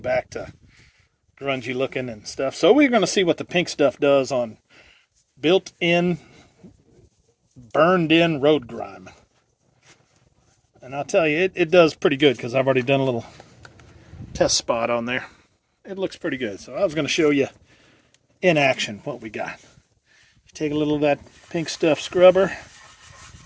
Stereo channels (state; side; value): identical; both; correlation 1.00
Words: to grungy looking and stuff. So we're going to see what the pink stuff does on built-in, burned-in road grime. And I'll tell you, it does pretty good because I've already done a little test spot on there. It looks pretty good. So I was going to show you in action what we got. You take a little of that pink stuff scrubber.